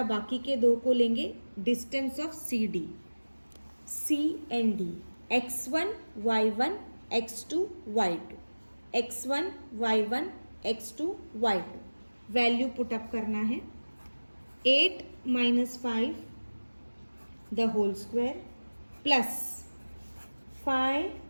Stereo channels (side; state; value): both; inverted; correlation -1.00